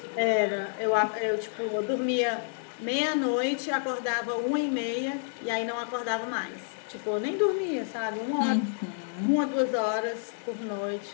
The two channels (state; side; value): silent; right; digital silence